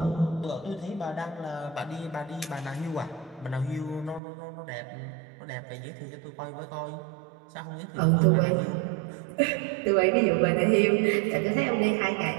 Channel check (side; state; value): left; drops out; at 4.2 s